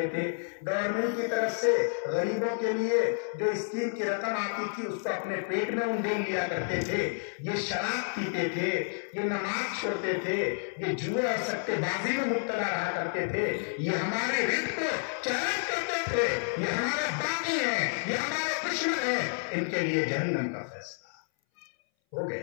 تھے, گورنمنٹ کی طرف سے غریبوں کے لیے جو اسکیم کی رقم آتی تھی اس کو اپنے پیٹ میں انڈیل لیا کرتے تھے, یہ شراب پیتے تھے, یہ نماز چھوڑتے تھے, یہ جوئے اور سٹے بازی میں مبتلا رہا کرتے تھے, یہ ہمارے رزق کو چیلنج کرتے تھے, یہ ہمارے باغی ہیں, یہ ہمارے دشمن ہیں. ان کے لیے جہنم کا فیصلہ ہو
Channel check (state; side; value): silent; right; 58 dB below the other